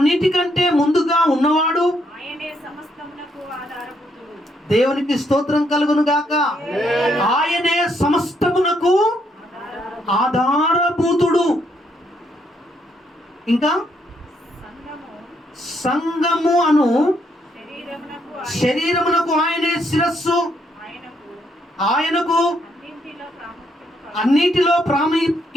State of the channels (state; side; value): normal; both; correlation 0.74